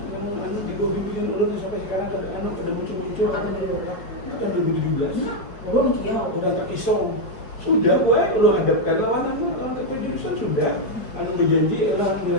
di bawah bimbingan ulun sampai sekarang pada muncul-muncul. Ada dulu. Kan 2017. Belum Kiau. Bukan terpisau. Sudah gue lu hadapkan lawan keputusan sudah. Anu berjanji adalah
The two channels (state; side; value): late; right; 4.7 ms